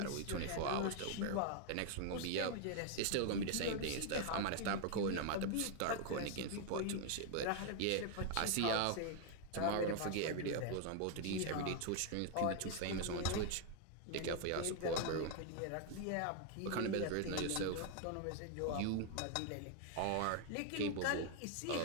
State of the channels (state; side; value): different; both; correlation 0.00